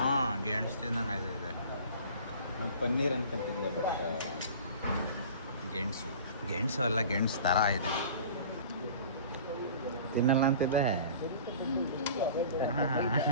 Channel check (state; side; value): inverted; both; correlation -0.43